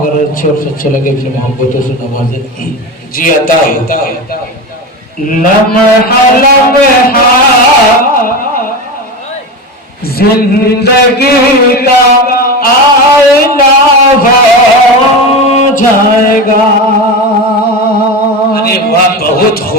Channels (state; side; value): normal; both; correlation 0.23